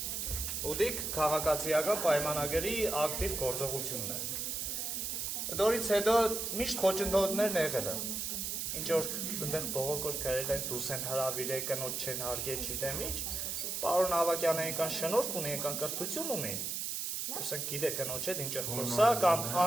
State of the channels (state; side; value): noise; right; hiss, 2 dB below the sound